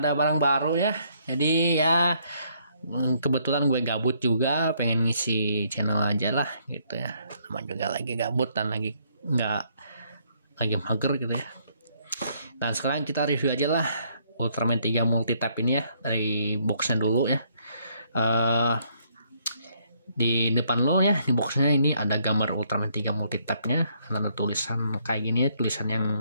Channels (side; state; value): both; inverted; correlation -0.69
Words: barang baru ya. Jadi ya kebetulan gue gabut juga, pengen ngisi channel aja lah gitu ya. Sama juga lagi gabut dan lagi mager gitu ya. Dan sekarang kita review aja lah Ultraman 3 multi-type ini ya, dari boxnya dulu ya. Di depan lo ya, di boxnya ini ada gambar Ultraman 3 multi-type nya, ada tulisan kayak gini ya, tulisan